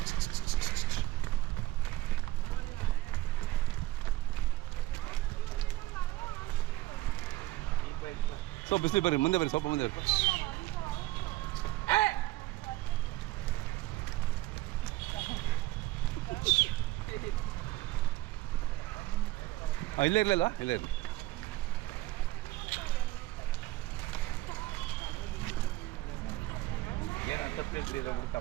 ಸೊ ಬಿಸಿಲು ಬರ್ರಿ ಮುಂದೆ ಬರ್ರಿ ಸ್ವಲ್ಪ ಮುಂದೆ ಬರ್ರಿ ಇಲ್ಲೇ ಇರಲಿಲ್ಲ ಇಲ್ಲೇ ಇರಲಿ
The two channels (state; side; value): quieter; left; 17.0 dB